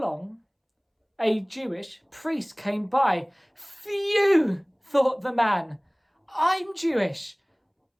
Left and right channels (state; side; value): identical; both; correlation 1.00